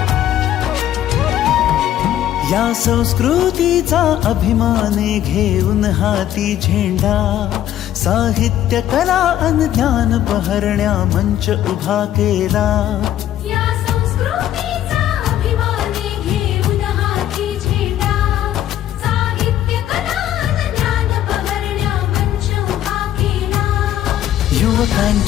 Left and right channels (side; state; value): right; quieter; 11.9 dB